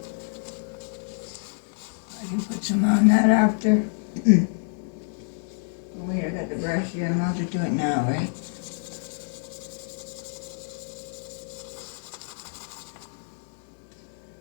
I can put some on that after. Oh wait, I got the brush here. I'm allowed to do it now, right?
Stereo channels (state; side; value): silent; right; 60 dB below the other